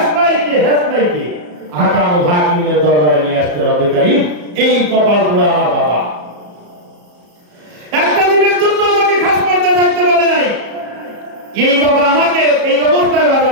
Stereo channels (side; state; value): left; late; 34 ms